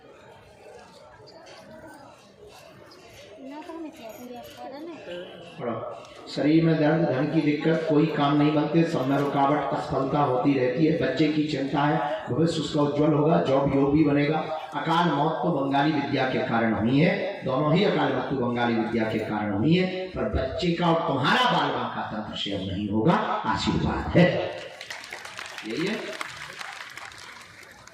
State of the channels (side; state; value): both; identical; correlation 1.00